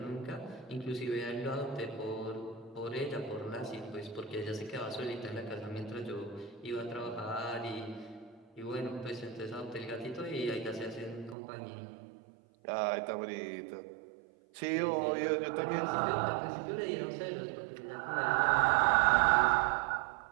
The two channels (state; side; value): drops out; left; at 11.4 s